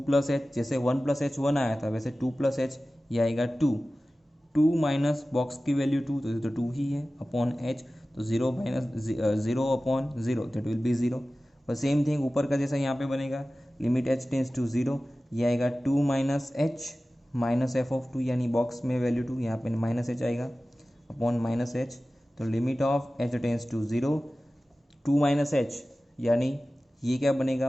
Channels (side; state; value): both; normal; correlation 0.96